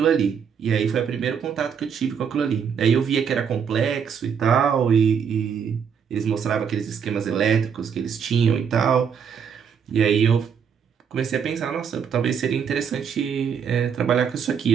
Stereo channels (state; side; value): quieter; left; 7.2 dB